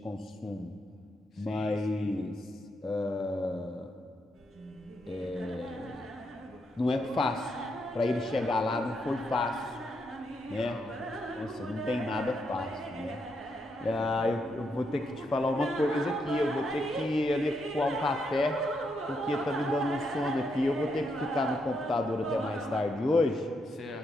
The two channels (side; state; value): both; normal; correlation 0.79